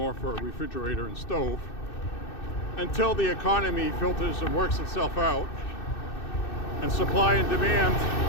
for a refrigerator and stove until the economy filters and works itself out and supply and demand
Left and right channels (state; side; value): late; right; 2.6 ms